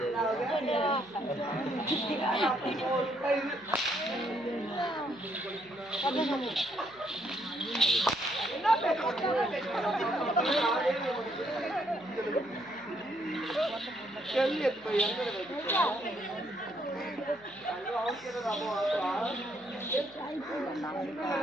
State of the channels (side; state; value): left; noise; hum, 25 dB below the sound